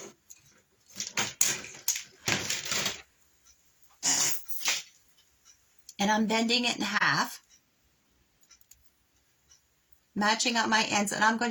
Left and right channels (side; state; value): both; identical; correlation 1.00